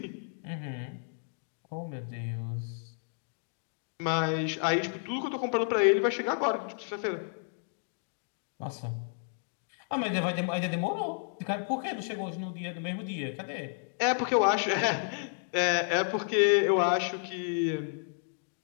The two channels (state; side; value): silent; right; digital silence